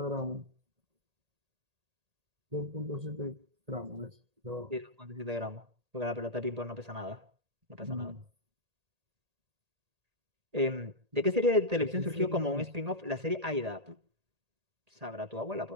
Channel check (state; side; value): late; left; 1.8 ms